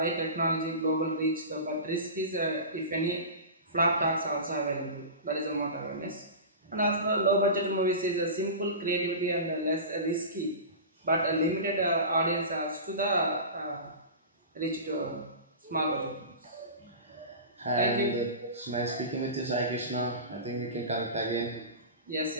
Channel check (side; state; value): both; inverted; correlation -0.30